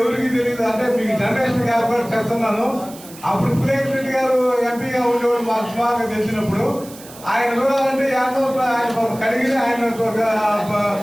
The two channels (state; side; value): noise; right; hiss, 18 dB below the sound